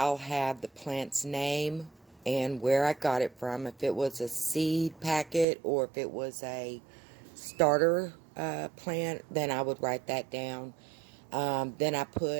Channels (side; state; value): left; drops out; at 5.5 s